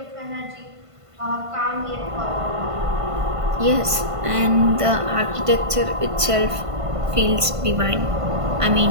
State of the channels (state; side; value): late; left; 1.5 ms